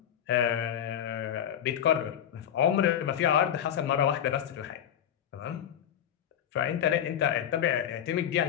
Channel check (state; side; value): quieter; right; 9.8 dB